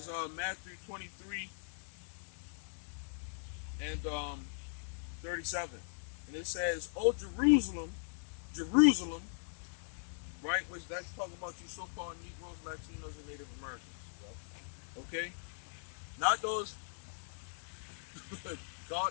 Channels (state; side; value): silent; right; digital silence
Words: Matthew 23 and 37, and it says, "Oh Jerusalem, Jerusalem," right? Which that's talking about you so-called Negroes, Latinos, and Native Americans. Okay, not those